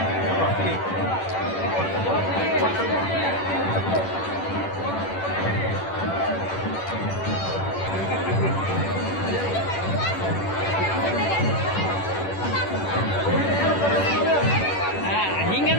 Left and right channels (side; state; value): right; late; 10 ms